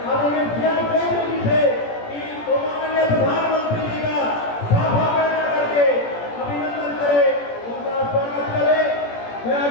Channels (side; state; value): right; late; 17 ms